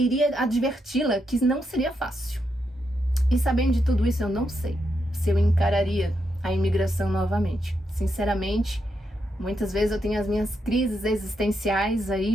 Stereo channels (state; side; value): normal; both; correlation 0.82